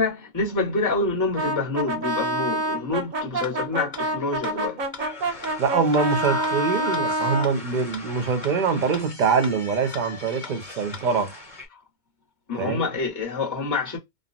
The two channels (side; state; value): left; late; 2.2 ms